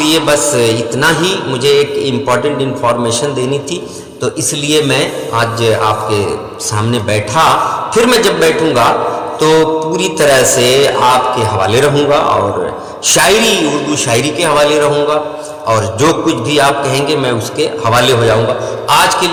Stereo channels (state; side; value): identical; both; correlation 1.00